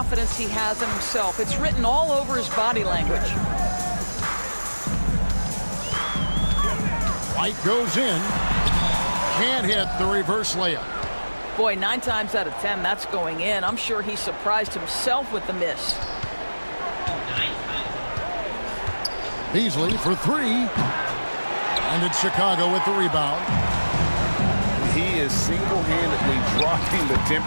he has in himself. It's written all over his body language. White goes in. Can't hit the reverse layup. Boy, 9 times out of 10, that's going in. I'm sure he surprised himself with the miss. Beasley for 3. And it's Chicago with the rebound. He is single-handedly dropping the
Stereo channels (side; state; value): both; inverted; correlation -1.00